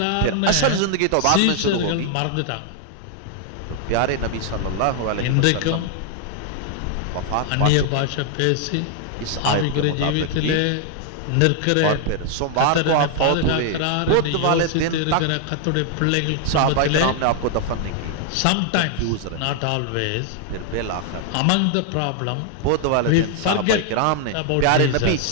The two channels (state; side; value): different; both; correlation 0.00